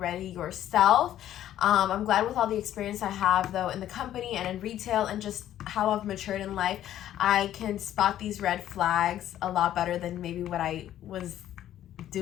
yourself. I'm glad with all the experience I have though in the company and in retail, and just how I've matured in life, I can spot these red flags a lot better than maybe what I was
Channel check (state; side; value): quieter; right; 12.0 dB